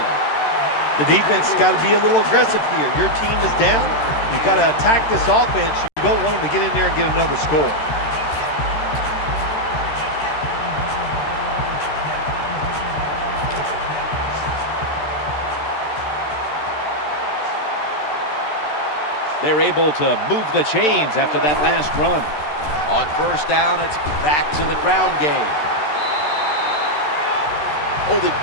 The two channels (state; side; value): late; right; 13 ms